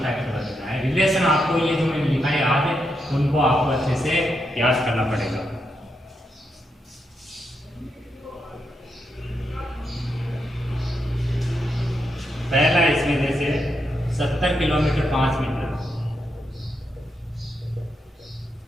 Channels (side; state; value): both; normal; correlation 0.82